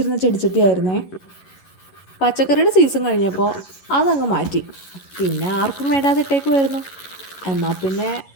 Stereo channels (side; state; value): right; late; 11 ms